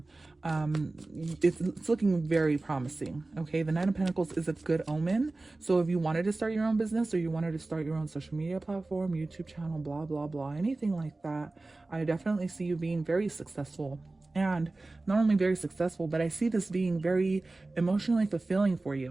it's looking very promising, okay? The Nine of Pentacles is a good omen. So if you wanted to start your own business, or you wanted to start your own social media platform, YouTube channel, blah blah blah, anything like that, I definitely see you being very successful. And not only very successful, but I see this being very emotionally fulfilling for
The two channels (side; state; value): left; quieter; 3.1 dB